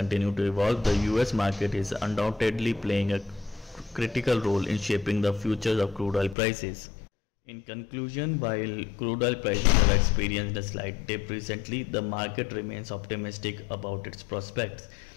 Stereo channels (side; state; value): right; drops out; at 6.4 s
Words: to evolve, the US market is undoubtedly playing a critical role in shaping the futures of crude oil prices. In conclusion, while crude oil prices have experienced a slight dip recently, the market remains optimistic about its prospects.